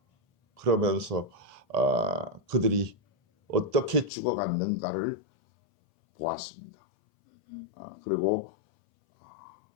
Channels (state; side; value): drops out; right; at 4.1 s